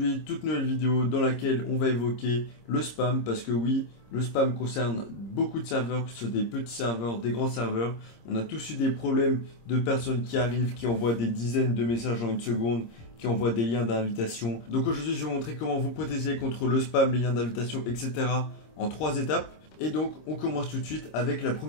toute nouvelle vidéo dans laquelle on va évoquer le spam parce que oui, le spam concerne beaucoup de serveurs, que ce soit des petits serveurs, des grands serveurs. On a tous eu des problèmes de personnes qui arrivent, qui envoient des dizaines de messages en une seconde, qui envoient des liens d'invitation. Donc aujourd'hui, je vais vous montrer comment vous protéger contre le spam, les liens d'invitation, etc. en 3 étapes. Et donc, on commence tout de suite avec la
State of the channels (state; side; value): late; right; 26 ms